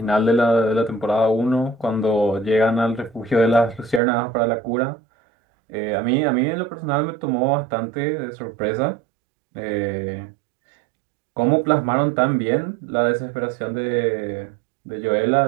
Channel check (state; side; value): drops out; left; at 4.0 s